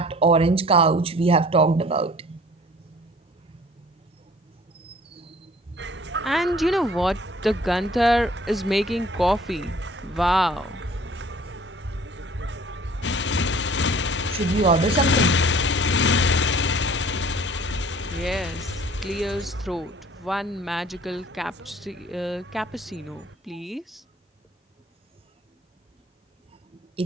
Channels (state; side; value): normal; both; correlation 0.51